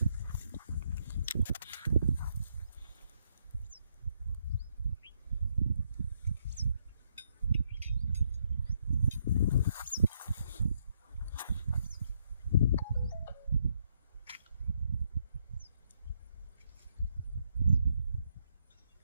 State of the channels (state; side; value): inverted; both; correlation -0.75